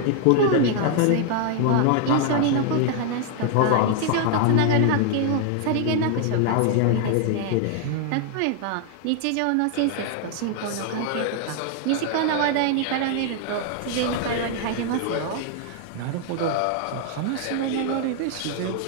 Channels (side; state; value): both; different; correlation 0.00